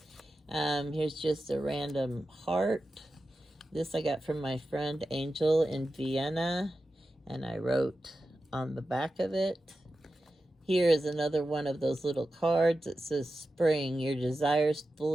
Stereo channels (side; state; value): both; normal; correlation 0.92